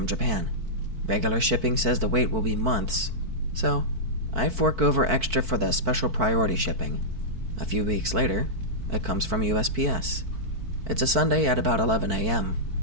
Japan. Regular shipping says the wait will be months, so I fork over extra for the special priority shipping. A few weeks later, it comes from USPS. It's a Sunday at about 11 a.m.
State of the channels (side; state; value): left; late; 4.5 ms